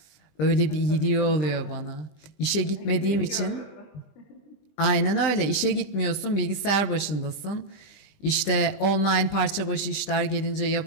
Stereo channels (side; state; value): right; late; 20 ms